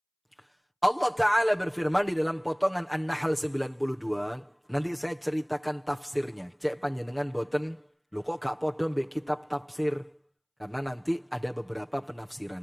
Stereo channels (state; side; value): identical; both; correlation 1.00